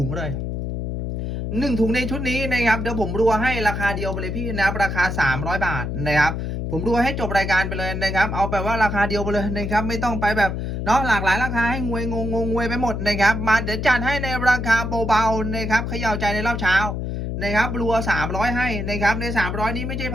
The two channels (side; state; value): left; noise; hum, 3 dB below the sound